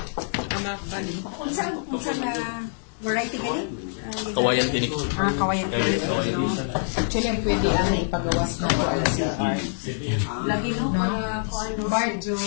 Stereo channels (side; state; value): right; silent; 62 dB below the other